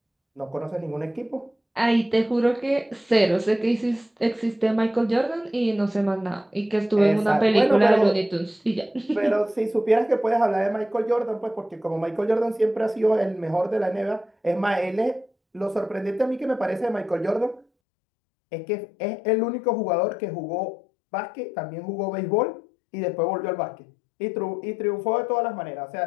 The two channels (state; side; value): drops out; right; at 17.7 s